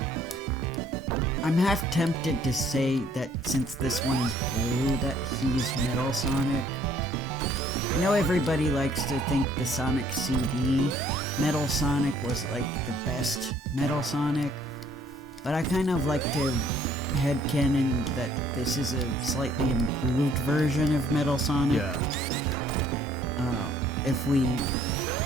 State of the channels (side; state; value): both; normal; correlation 0.61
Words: I'm half tempted to say that since this one is blue, that he's Metal Sonic. I know everybody likes to think the Sonic CD Metal Sonic was like the best Metal Sonic, but I kind of like to headcanon that this is a slightly improved version of Metal Sonic. Yeah. If we